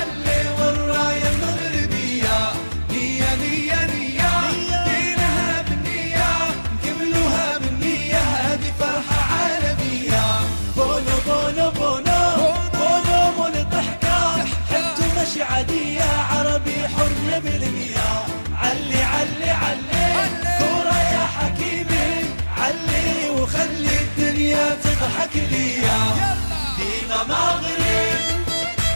والراية المغربية. نية نية نية دينها بالنية نكملوها بالنية هذه فرحة عالمية. بونو بونو بونو بونو مول الضحكة حبته ماشي عادية عربي حر بالمياه. علي علي علي كورة يا حكيمي علي وخلي الدنيا تضحك ليا. ديما مغرب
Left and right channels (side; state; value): both; inverted; correlation -1.00